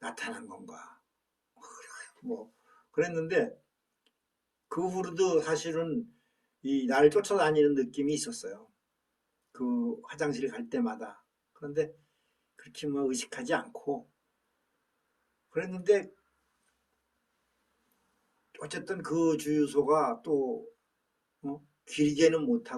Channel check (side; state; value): both; identical; correlation 1.00